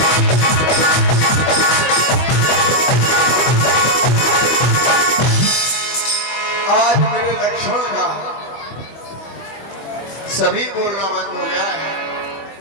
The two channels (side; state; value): right; late; 25 ms